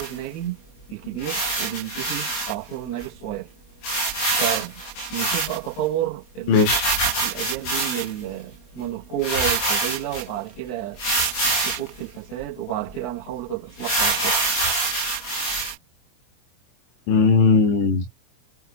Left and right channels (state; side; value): late; right; 24 ms